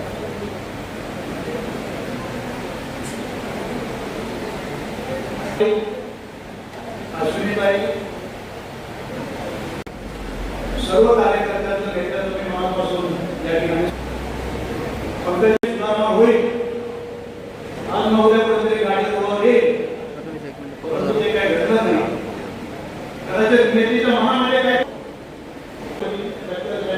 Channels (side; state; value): both; identical; correlation 1.00